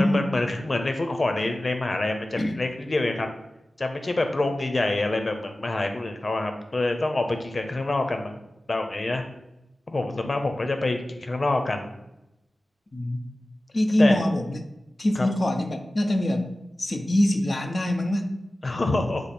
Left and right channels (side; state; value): both; normal; correlation 0.96